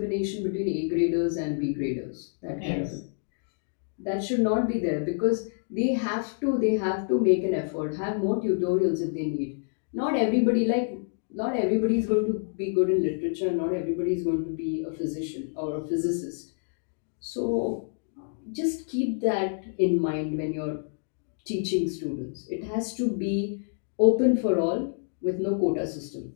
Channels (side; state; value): right; silent; digital silence